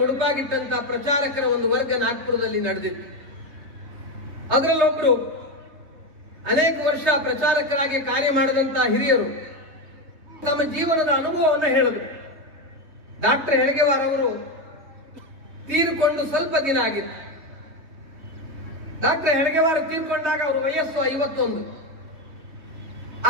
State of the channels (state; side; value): late; left; 3.2 ms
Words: ಮುಡುಪಾಗಿಟ್ಟಂತಹ ಪ್ರಚಾರಕರ ಒಂದು ವರ್ಗ ನಾಗ್ಪುರದಲ್ಲಿ ನಡೆದಿತ್ತು. ಅದರಲ್ಲೊಬ್ಬರು ಅನೇಕ ವರ್ಷ ಪ್ರಚಾರಕರಾಗಿ ಕಾರ್ಯ ಮಾಡಿದಂತಹ ಹಿರಿಯರು ತಮ್ಮ ಜೀವನದ ಅನುಭವವನ್ನು ಹೇಳಿದರು. ಡಾಕ್ಟರ್ ಹೆಳಗೆವಾರ್ ಅವರು ತೀರಿಕೊಂಡು ಸ್ವಲ್ಪ ದಿನ ಆಗಿತ್ತು. ಡಾಕ್ಟರ್ ಹೆಳಗೆವಾರ್ ತೀರ್ಕೊಂಡಾಗ ಅವರ ವಯಸ್ಸು 51.